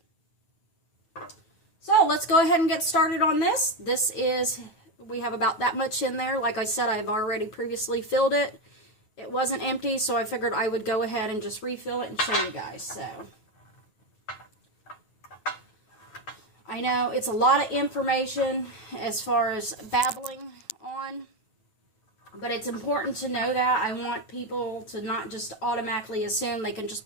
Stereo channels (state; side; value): late; right; 9.3 ms